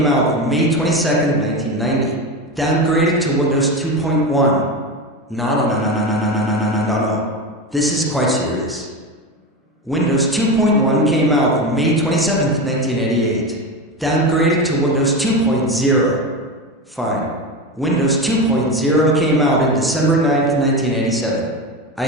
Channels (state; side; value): normal; both; correlation 0.20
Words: out on May 22nd, 1990. Downgraded to Windows 2.1. No. This is quite serious. Windows 2.1 came out on May 27th, 1988. Downgraded to Windows 2.0. Fine. Windows 2.0 came out on December 9th, 1987. I